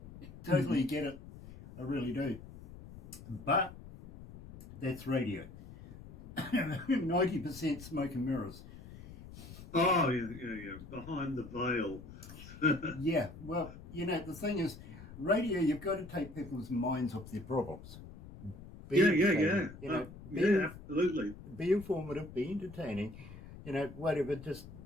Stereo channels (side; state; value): left; noise; rumble, 15 dB below the sound